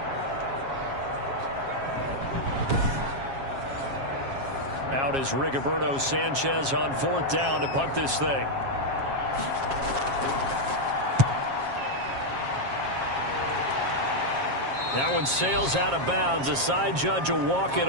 Out is Rigoberto Sanchez on 4th down to punt this thing. That one sails out of bounds. The side judge will walk it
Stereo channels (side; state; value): left; late; 7.4 ms